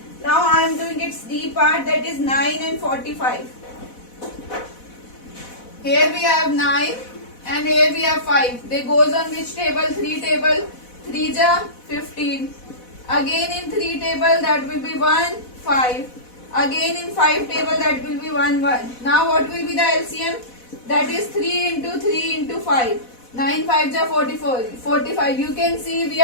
Now I am doing its D part, that is 9 and 45. Here we have 9 and here we have 5. They goes on which table? 3 table. 3 ja 15. Again in 3 table that will be 1, 5. Again in 5 table that will be 1, 1. Now what will be the LCM? That is 3 into 3 into 5. 9 5 ja 44. 45. You can see we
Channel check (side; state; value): right; late; 4.1 ms